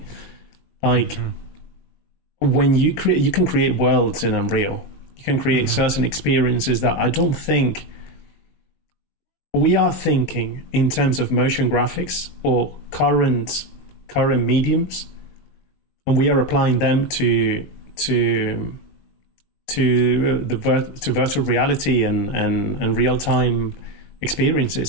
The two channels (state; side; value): late; right; 20 ms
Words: Like, when you can create worlds in Unreal. You can create certain experiences that I don't think we are thinking in terms of motion graphics or current mediums, and we are applying them to virtual reality and real time